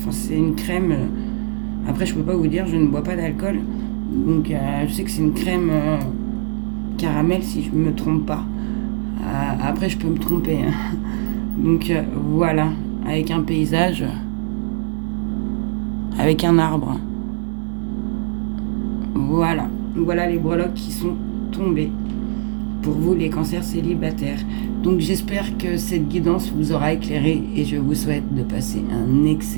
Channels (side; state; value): left; silent; 65 dB below the other